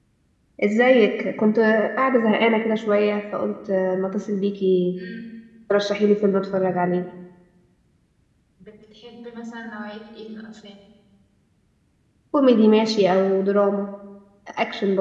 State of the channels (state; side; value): identical; both; correlation 1.00